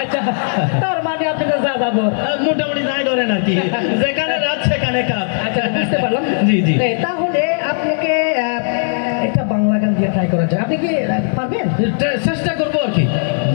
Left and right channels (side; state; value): right; silent; digital silence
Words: আচ্ছা, তার মানে আপনি তো যা যাবো মোটামুটি যাই ধরেন আর কি, যেখানে রাত সেখানে কাজ। আচ্ছা, বুঝতে পারলাম। জি জি। তাহলে আপনাকে একটা বাংলা গান দিয়ে ট্রাই করা যায়, আপনি কি পারবেন? চেষ্টা করবো আর কি,